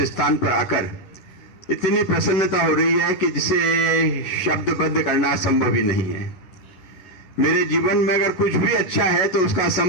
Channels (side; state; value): right; late; 11 ms